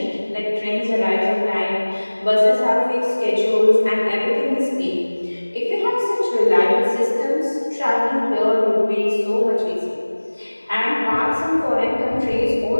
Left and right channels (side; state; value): both; inverted; correlation -1.00